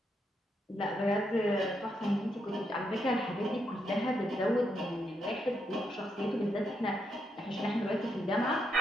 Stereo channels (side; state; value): both; normal; correlation 0.80